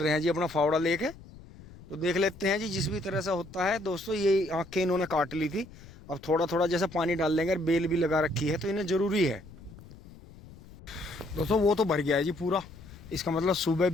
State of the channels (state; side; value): noise; left; rumble, 19 dB below the sound